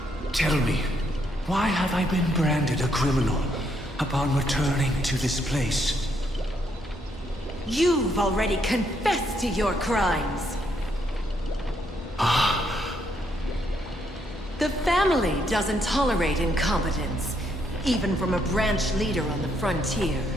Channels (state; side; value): normal; both; correlation 0.74